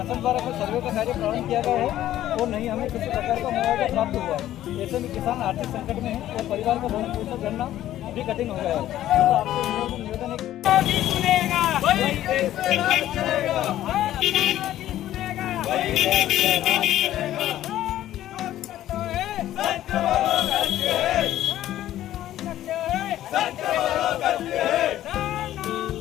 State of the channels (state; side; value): quieter; right; 13.1 dB